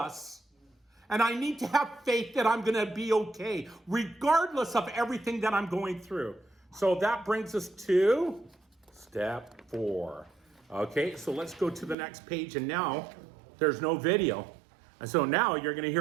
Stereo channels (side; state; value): left; drops out; at 12.0 s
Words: And I need to have faith that I'm going to be okay, regardless of everything that I'm going through. So that brings us to step 4. Okay, so let's go to the next page. And now there's no video. And so now you're going to